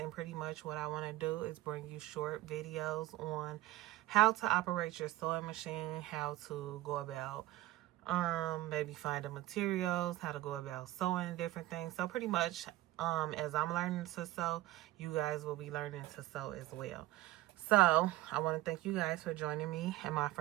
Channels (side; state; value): left; quieter; 16.7 dB